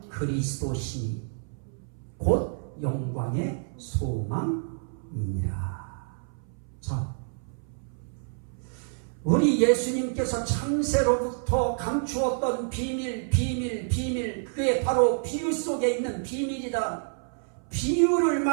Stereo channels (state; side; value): silent; left; 59 dB below the other